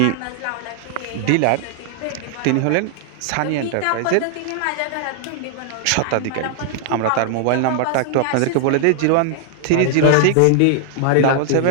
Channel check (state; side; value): different; both; correlation 0.00